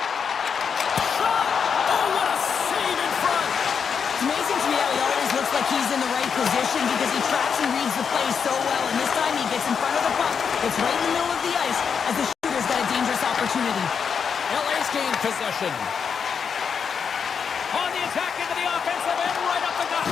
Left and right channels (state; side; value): quieter; right; 6.6 dB